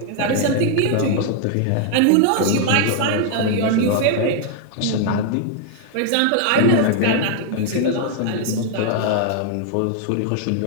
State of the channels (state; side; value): different; both; correlation 0.00